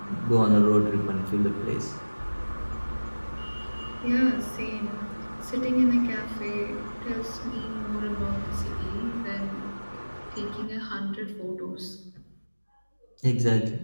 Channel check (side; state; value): both; inverted; correlation -1.00